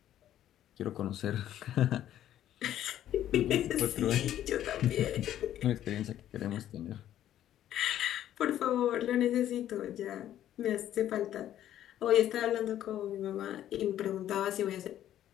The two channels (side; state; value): right; quieter; 11.8 dB